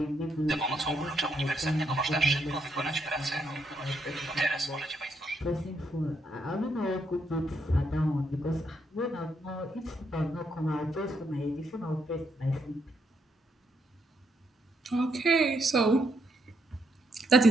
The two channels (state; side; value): normal; both; correlation 0.76